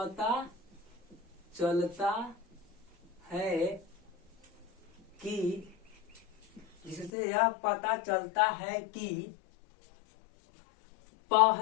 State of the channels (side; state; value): right; drops out; at 7.1 s